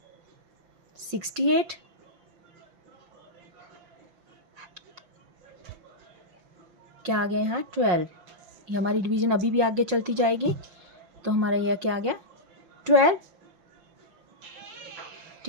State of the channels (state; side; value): late; left; 5.5 ms